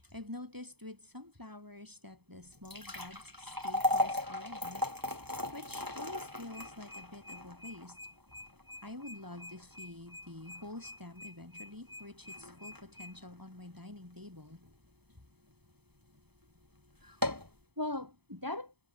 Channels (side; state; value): left; late; 0.98 ms